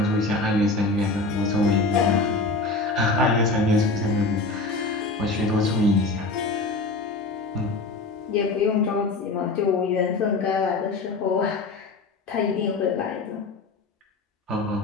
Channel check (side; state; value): right; quieter; 3.4 dB